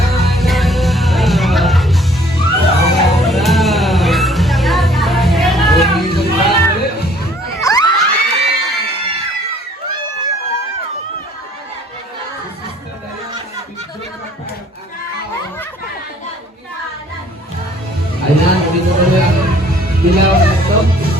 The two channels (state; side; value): normal; both; correlation 0.58